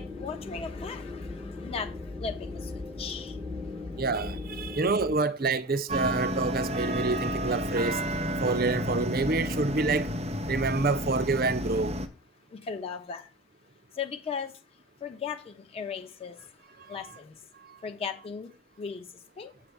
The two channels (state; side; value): normal; both; correlation 0.31